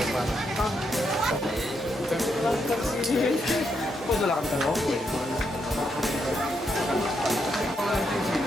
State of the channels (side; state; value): both; normal; correlation 0.80